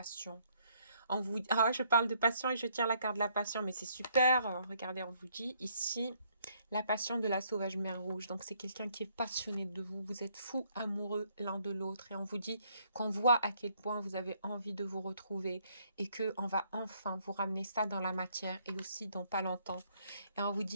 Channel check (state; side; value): inverted; both; correlation -0.68